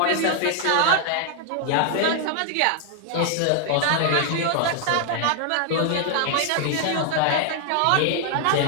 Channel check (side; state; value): both; different; correlation 0.00